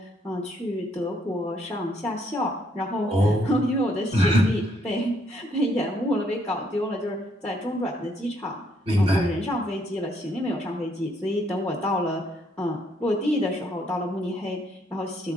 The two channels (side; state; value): both; normal; correlation 0.70